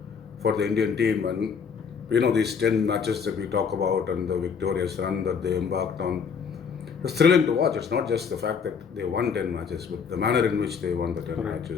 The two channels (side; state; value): right; quieter; 6.3 dB